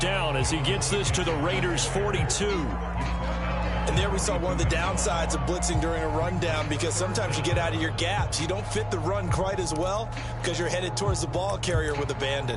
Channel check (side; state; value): both; identical; correlation 1.00